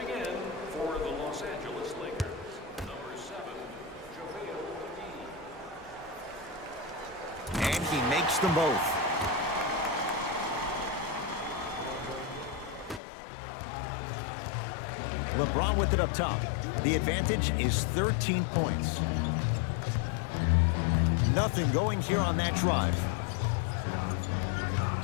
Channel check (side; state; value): right; drops out; at 13.0 s